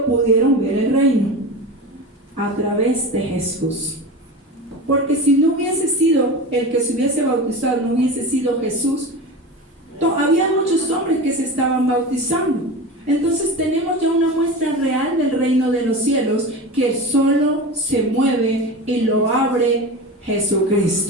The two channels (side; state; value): both; normal; correlation 0.28